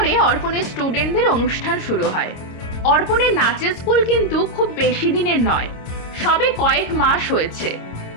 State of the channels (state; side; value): late; right; 26 ms